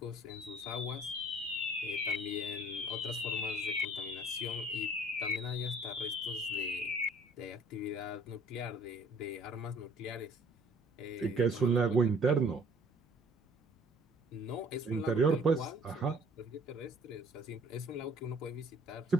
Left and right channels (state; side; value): normal; both; correlation 0.55